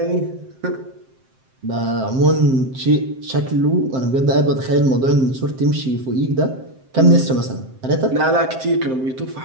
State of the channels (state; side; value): late; left; 7.6 ms